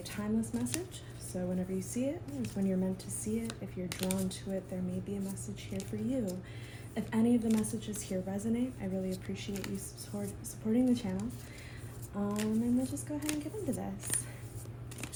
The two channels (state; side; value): identical; both; correlation 1.00